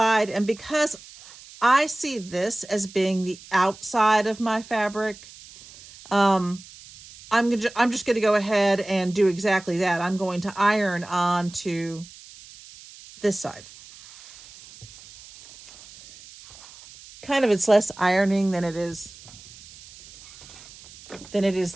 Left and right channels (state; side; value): noise; right; hiss, 20 dB below the sound